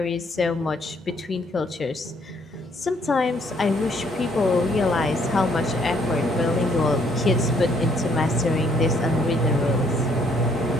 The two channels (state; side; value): normal; both; correlation 0.67